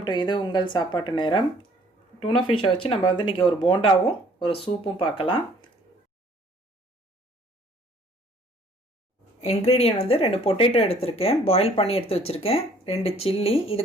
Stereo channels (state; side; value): normal; both; correlation 0.58